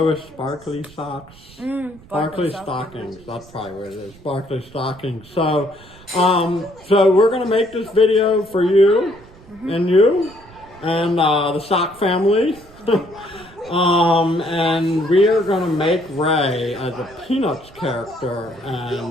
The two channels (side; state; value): right; noise; rumble, 23 dB below the sound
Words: with Sparkly Socks. Sparkly Stockings, that's probably what it is. Sparkly Stockings. So, so we're gonna make this video for you. And you, and the Sock family, and we are going to make Ray as a Peanuts character,